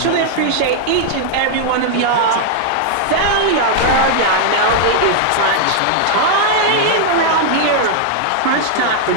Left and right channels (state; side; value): different; both; correlation 0.00